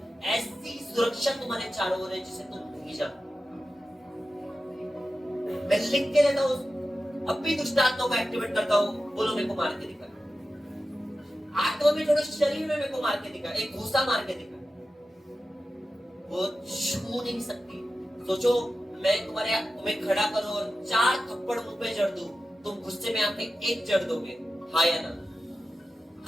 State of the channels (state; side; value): normal; both; correlation 0.93